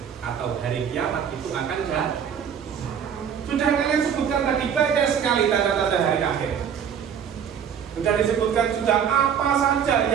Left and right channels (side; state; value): left; quieter; 8.0 dB